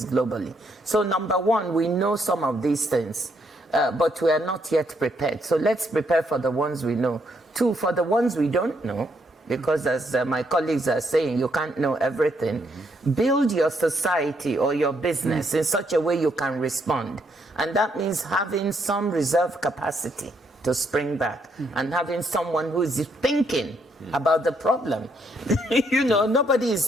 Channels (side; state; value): both; normal; correlation 0.74